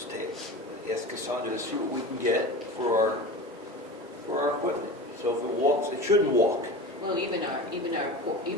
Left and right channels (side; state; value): both; normal; correlation 0.31